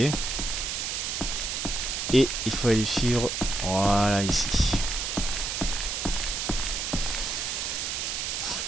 Et il faut aller suivre. Voilà, ici.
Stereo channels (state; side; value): noise; right; hiss, 2 dB below the sound